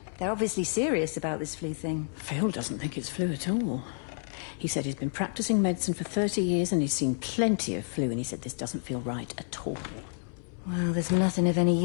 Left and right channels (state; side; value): silent; right; 58 dB below the other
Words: They're obviously serious about this flu thing. Phil doesn't think it's flu at all. He said he's been practicing medicine for 30 years and he's seen plenty of flu, and he said this doesn't feel right at all. Well, there's nothing of any